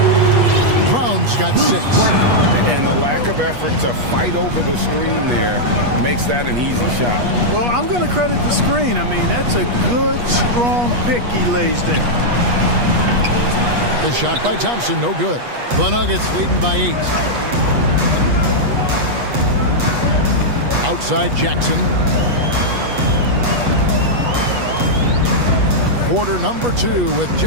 Brown's got 6. And the lack of effort to fight over the screen there makes that an easy shot. Well, I'm going to credit the screen. I mean, that's a good, strong pick he lays there. The shot by Thompson, no good. The Nuggets leading by 8. Outside Jackson. Quarter number 2 with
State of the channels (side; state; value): left; late; 8.3 ms